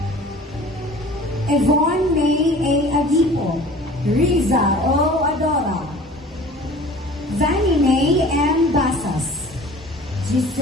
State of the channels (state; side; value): normal; both; correlation 0.44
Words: Yvonne May A. Agipo, Riza O. Adora, Vanny May M. Basas,